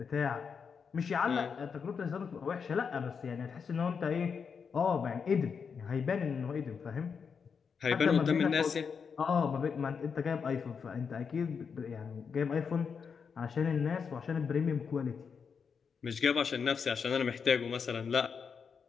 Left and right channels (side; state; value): right; quieter; 6.1 dB